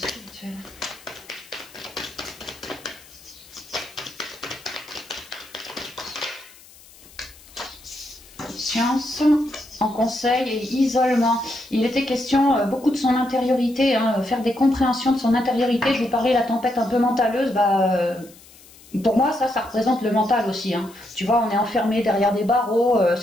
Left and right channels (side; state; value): left; noise; hiss, 23 dB below the sound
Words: Science, en conseil et isolement. Il était question beaucoup de son intériorité, hein, faire des compréhensions de son intériorité. Je vous parlais de la tempête un peu mentaleuse, pour moi ça représente le mental aussi. Hein. Tu vois, on est enfermé derrière des barreaux,